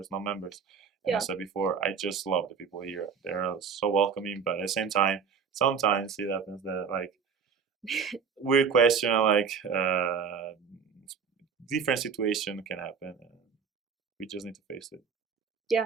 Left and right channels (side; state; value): left; quieter; 6.3 dB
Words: non-members. And as I said before, I just love the people here. They're so welcoming, but at the same time, sometimes it happens that like weird question, like different situation can happen, and we just need to face it.